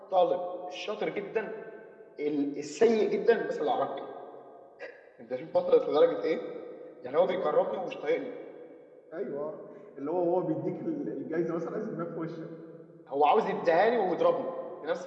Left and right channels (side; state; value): both; identical; correlation 1.00